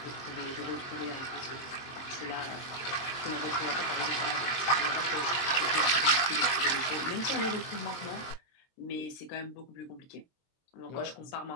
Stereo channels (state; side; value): late; right; 23 ms